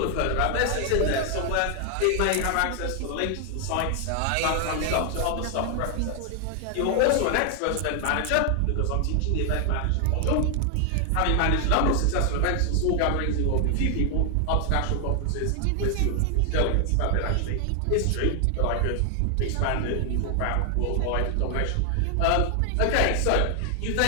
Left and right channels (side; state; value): both; different; correlation 0.00